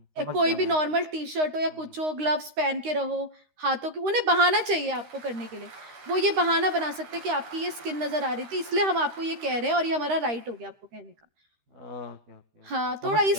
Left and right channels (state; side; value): late; left; 13 ms